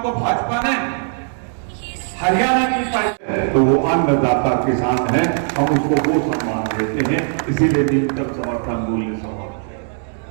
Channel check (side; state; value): left; silent; 66 dB below the other